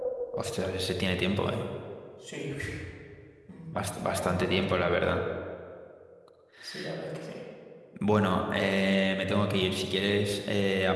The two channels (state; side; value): identical; both; correlation 1.00